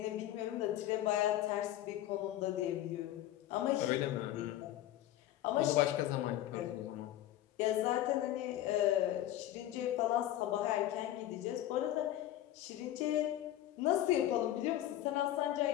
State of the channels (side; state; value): right; quieter; 13.3 dB